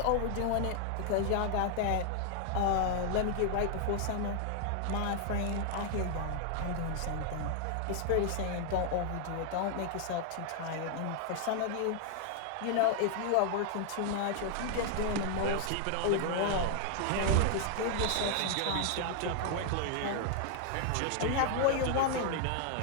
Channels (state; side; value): different; both; correlation 0.00